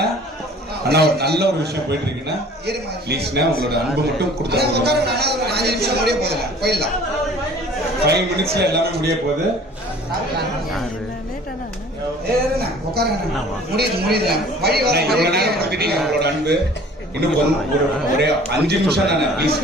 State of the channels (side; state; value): both; normal; correlation 0.49